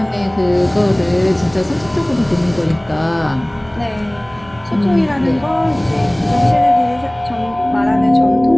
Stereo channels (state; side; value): noise; right; hum, 26 dB below the sound